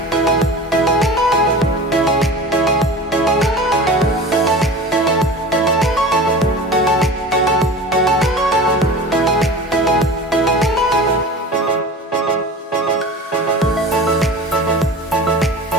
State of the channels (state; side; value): normal; both; correlation 0.35